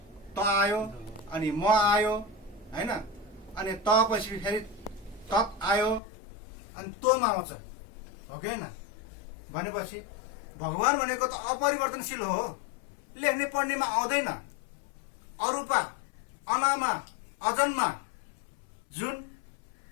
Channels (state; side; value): drops out; right; at 6.0 s